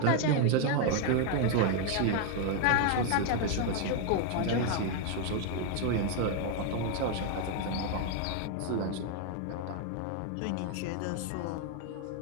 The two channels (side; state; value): both; different; correlation 0.00